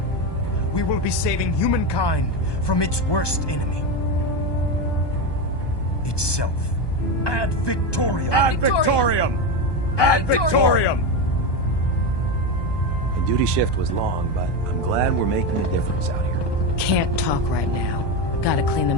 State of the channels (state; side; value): late; right; 1.2 ms